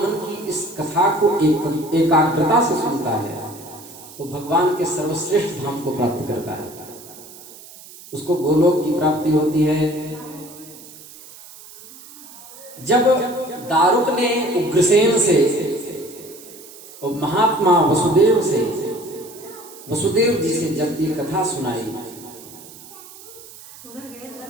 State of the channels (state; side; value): noise; right; hiss, 18 dB below the sound